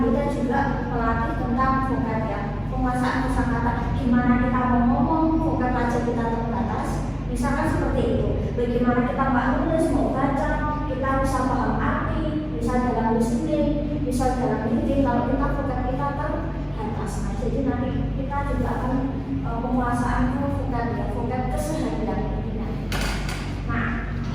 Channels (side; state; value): both; identical; correlation 1.00